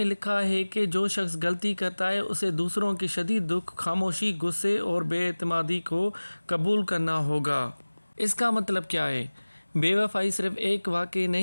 لکھا ہے کہ جو شخص غلطی کرتا ہے اسے دوسروں کے شدید دکھ، خاموشی، غصے اور بے اعتمادی کو قبول کرنا ہوگا۔ اس کا مطلب کیا ہے؟ بے وفائی صرف ایک واقعہ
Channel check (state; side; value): inverted; both; correlation -1.00